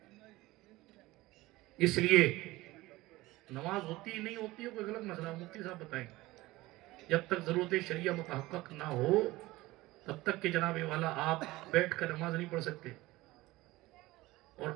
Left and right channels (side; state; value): left; quieter; 19.1 dB